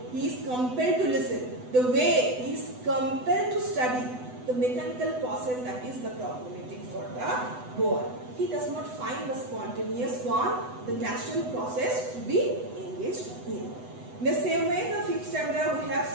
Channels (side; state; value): left; late; 8.0 ms